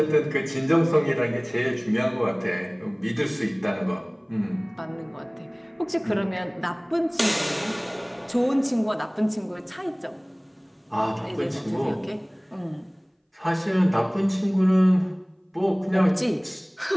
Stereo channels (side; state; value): both; identical; correlation 1.00